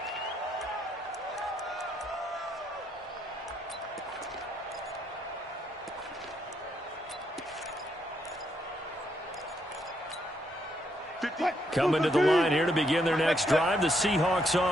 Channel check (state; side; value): normal; both; correlation 0.76